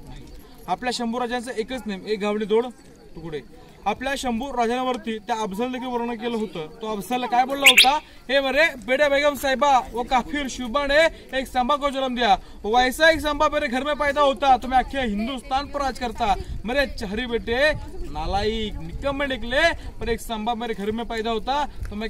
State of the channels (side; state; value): both; identical; correlation 1.00